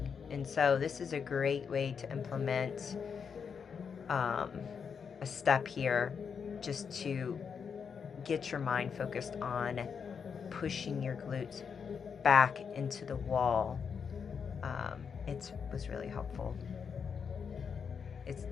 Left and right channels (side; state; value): right; quieter; 6.5 dB